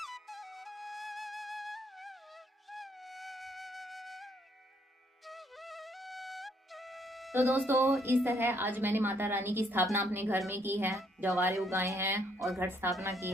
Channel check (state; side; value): normal; both; correlation 0.69